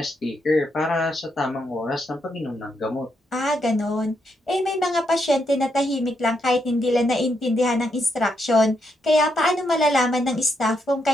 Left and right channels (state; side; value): normal; both; correlation 0.80